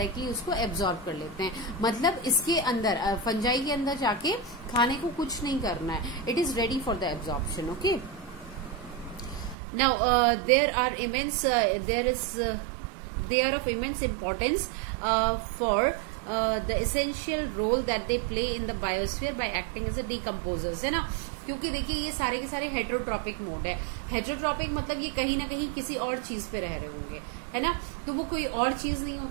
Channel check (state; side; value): drops out; left; at 9.6 s